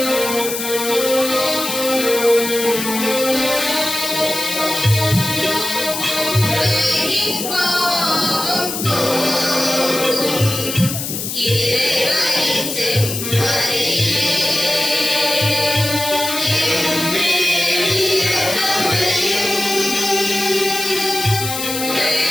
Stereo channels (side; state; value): left; noise; hiss, 5 dB below the sound